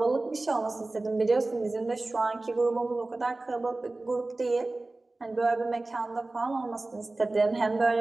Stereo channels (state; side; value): quieter; left; 3.1 dB